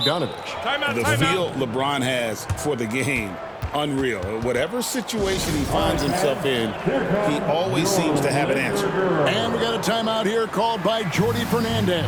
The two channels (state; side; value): identical; both; correlation 1.00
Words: The feel LeBron has for the game, unreal. Whatever situation he finds himself in, he always seems to have an answer. And we got a timeout here called by Jordi Fernandez.